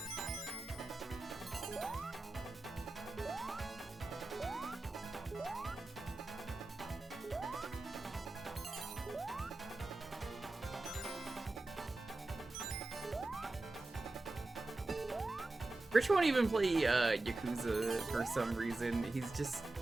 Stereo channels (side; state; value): left; quieter; 3.0 dB